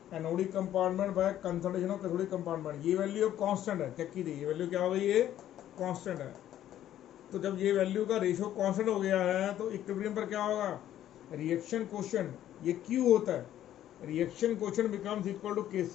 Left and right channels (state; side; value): quieter; right; 11.9 dB